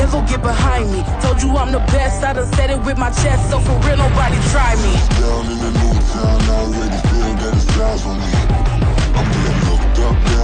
get behind me. Told you I'm the best, I done said it with my chest. So for real, nobody try me. Down in the new town, I already feel that it's eyes on me. I'm getting looked up,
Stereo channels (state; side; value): identical; both; correlation 1.00